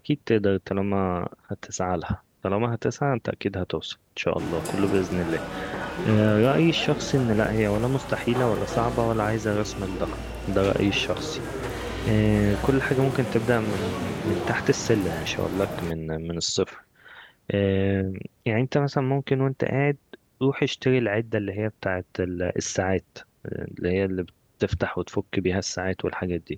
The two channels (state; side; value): identical; both; correlation 1.00